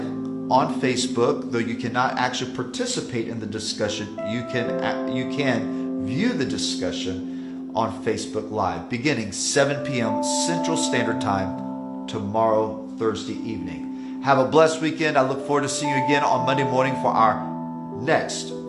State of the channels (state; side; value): identical; both; correlation 1.00